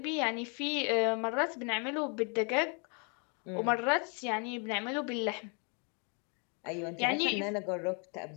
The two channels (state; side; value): quieter; right; 36.5 dB